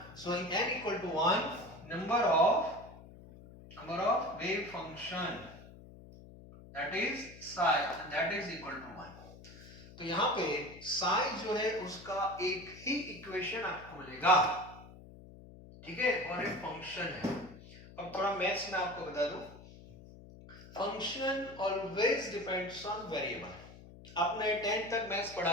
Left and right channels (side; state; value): left; noise; hum, 18 dB below the sound